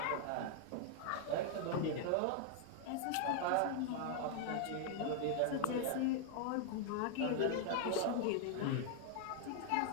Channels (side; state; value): both; different; correlation 0.00